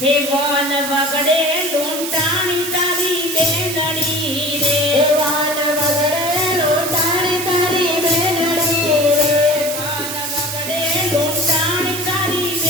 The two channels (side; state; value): right; noise; hiss, 6 dB below the sound